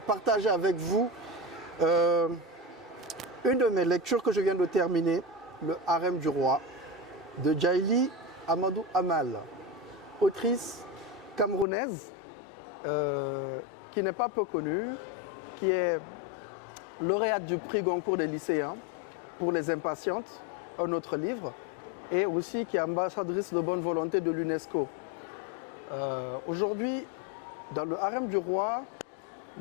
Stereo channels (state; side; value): drops out; right; at 11.7 s